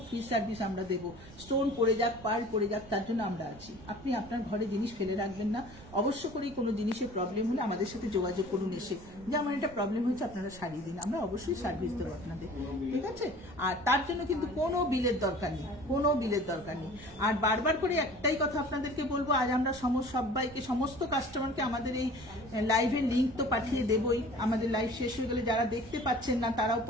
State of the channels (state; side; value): noise; right; rumble, 18 dB below the sound